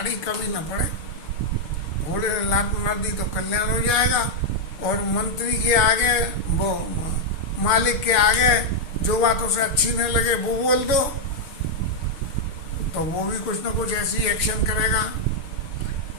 कभी न पड़े। घोड़े ने लात मार दी तो कल्याण हो जाएगा, और मंत्री के आगे वो मालिक के आगे जो बात उसे अच्छी नहीं लगे वो बोल दो तो वो भी कुछ ना कुछ ऐसी एक्शन करेगा।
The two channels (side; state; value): right; late; 6.6 ms